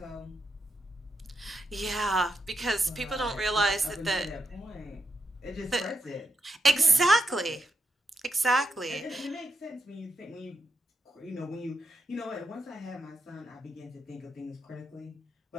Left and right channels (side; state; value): both; normal; correlation 0.83